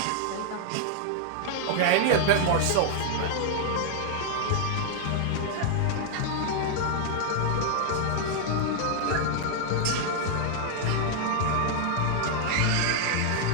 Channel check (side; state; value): both; different; correlation 0.00